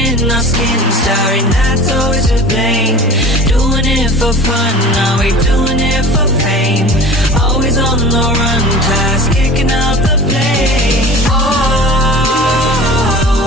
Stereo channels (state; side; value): normal; both; correlation 0.39